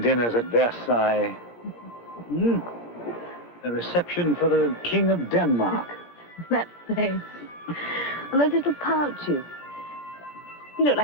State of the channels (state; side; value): late; right; 17 ms